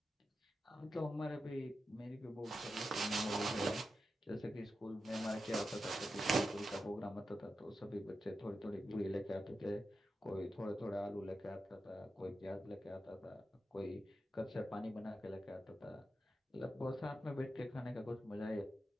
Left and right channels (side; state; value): both; normal; correlation 0.89